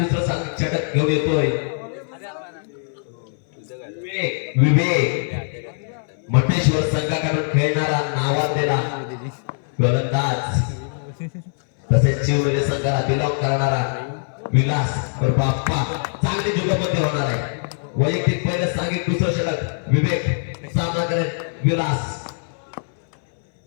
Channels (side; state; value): right; silent; 61 dB below the other